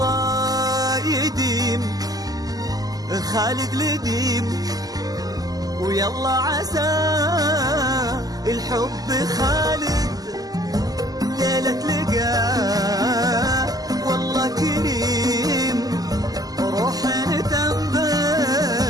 يديم خالد لديم، ويلا عسى الحب خالد ليلة لقاه والله كريم، روح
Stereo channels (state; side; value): late; left; 0.18 ms